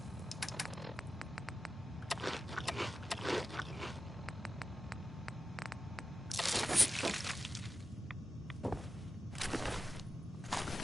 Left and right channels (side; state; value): both; normal; correlation 0.93